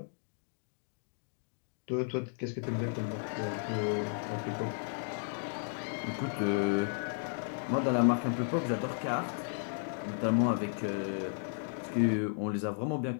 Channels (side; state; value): right; silent; digital silence